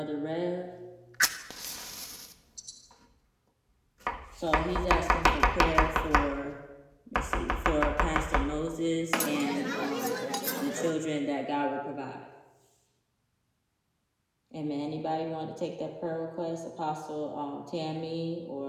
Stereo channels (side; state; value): both; identical; correlation 1.00